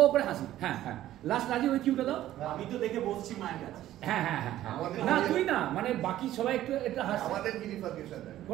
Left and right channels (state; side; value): quieter; left; 13.5 dB